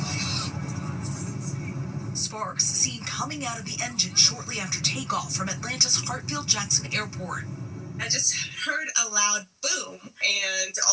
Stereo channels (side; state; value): both; identical; correlation 1.00